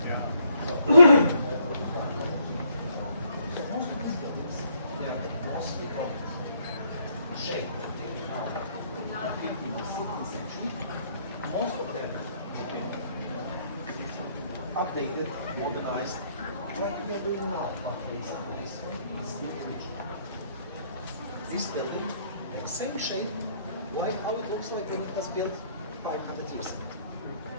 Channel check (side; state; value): both; inverted; correlation -0.68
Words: So, most of these buildings, they're mostly from shape. 15th or 16th century. Most of them have been updated, modernized, like we are doing now. But there is a place for it, it's still original. This building, the same shape, like how it looks like when it was built 500 years ago.